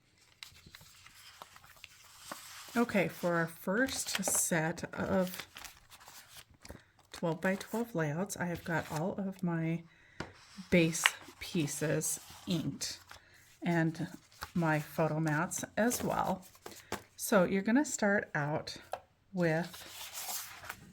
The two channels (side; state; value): both; identical; correlation 1.00